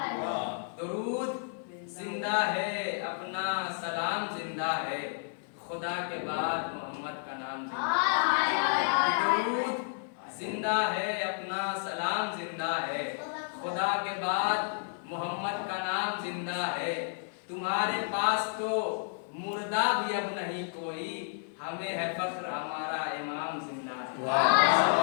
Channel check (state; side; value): silent; right; 57 dB below the other